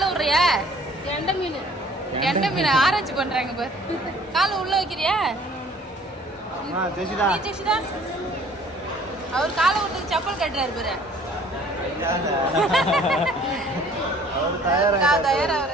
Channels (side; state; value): both; normal; correlation 0.54